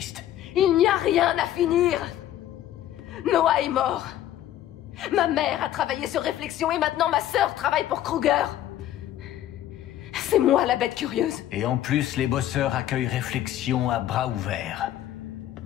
Il n'y a rien à finir. Noah est mort. Ma mère a travaillé sur Réflexion et maintenant ma sœur travaille pour Kruger. C'est moi la bête curieuse. Et en plus, les bosseurs accueillent Réflexion à bras ouverts.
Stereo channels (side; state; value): right; quieter; 12.3 dB